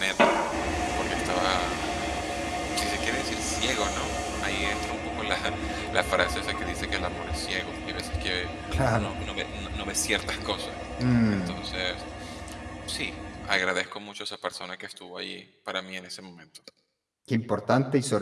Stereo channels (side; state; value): both; identical; correlation 1.00